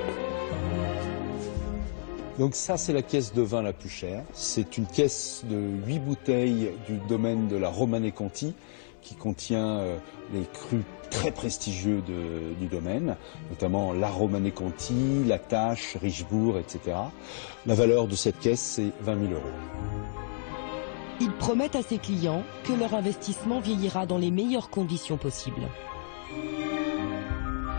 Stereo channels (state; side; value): silent; right; 58 dB below the other